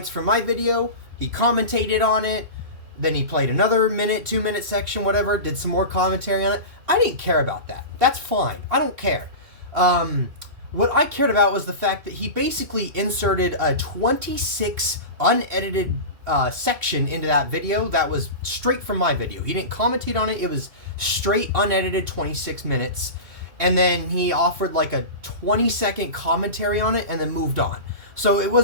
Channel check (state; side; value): late; left; 2.7 ms